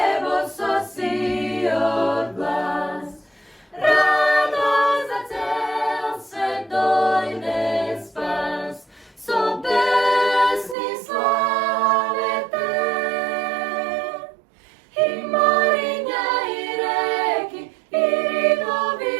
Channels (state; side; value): drops out; left; at 10.8 s